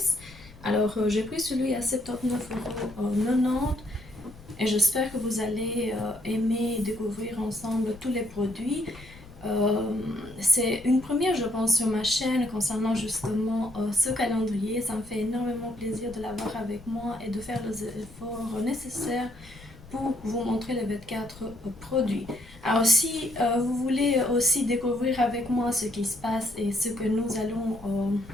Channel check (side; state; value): left; noise; rumble, 20 dB below the sound